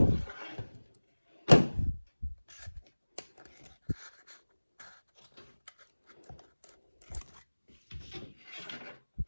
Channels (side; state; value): both; inverted; correlation -1.00